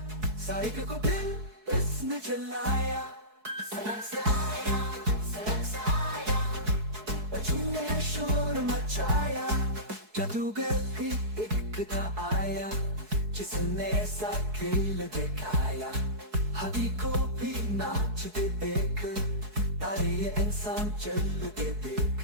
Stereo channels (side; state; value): left; late; 4.7 ms